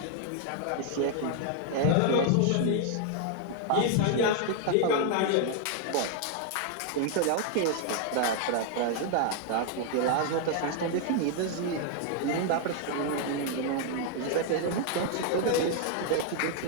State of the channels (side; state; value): both; different; correlation 0.00